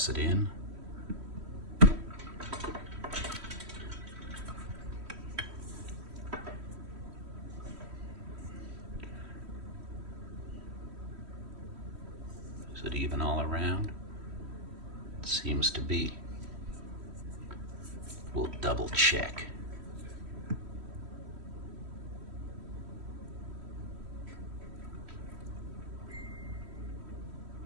it in. Is it even all around? It seems to be. We'll double check.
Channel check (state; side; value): late; left; 3.1 ms